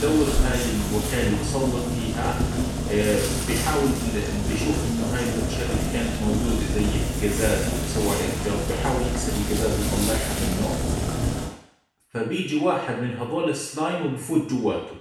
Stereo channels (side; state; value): both; identical; correlation 1.00